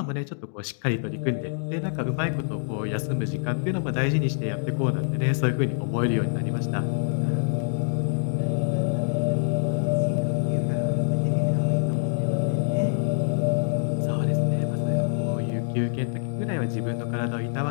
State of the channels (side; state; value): right; silent; digital silence